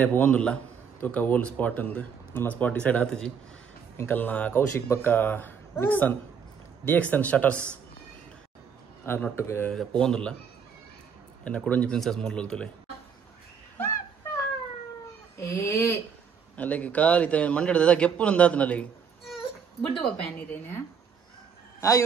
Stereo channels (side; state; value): left; quieter; 6.7 dB